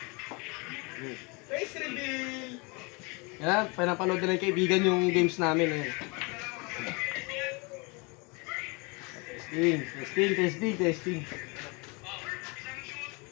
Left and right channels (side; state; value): right; quieter; 29.6 dB